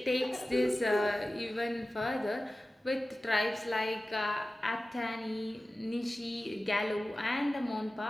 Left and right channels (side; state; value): both; normal; correlation 0.96